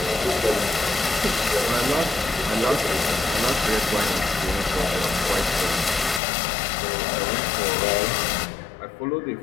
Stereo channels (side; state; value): right; drops out; at 6.2 s